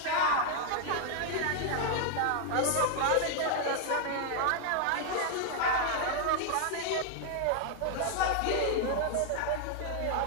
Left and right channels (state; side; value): different; both; correlation 0.00